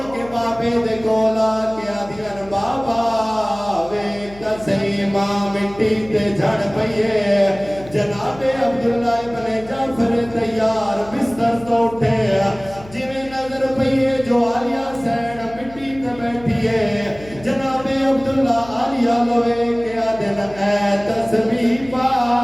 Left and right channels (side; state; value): left; noise; hum, 20 dB below the sound